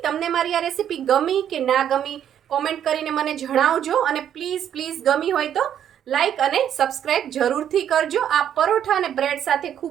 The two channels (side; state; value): left; quieter; 9.8 dB